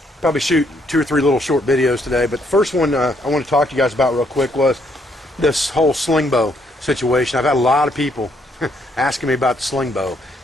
Probably shoot 2 or 3 little short videos today, but the first one I want to talk to you guys about real quick was this whole sling bow situation. I've had a lot of people asking me about the sling bow.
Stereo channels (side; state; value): both; normal; correlation 0.71